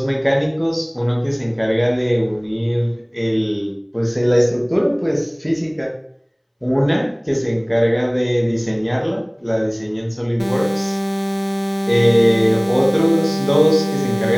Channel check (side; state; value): both; identical; correlation 1.00